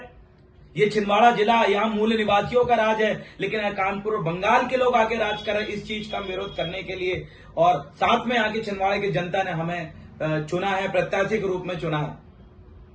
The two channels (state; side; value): identical; both; correlation 1.00